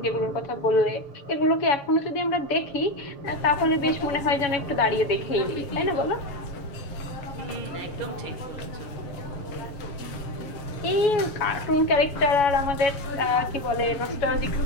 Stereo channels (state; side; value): late; right; 6.8 ms